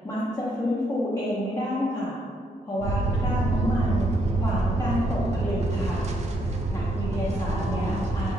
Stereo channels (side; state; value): both; normal; correlation 0.74